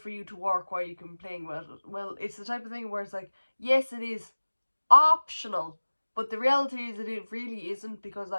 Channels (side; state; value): both; inverted; correlation -1.00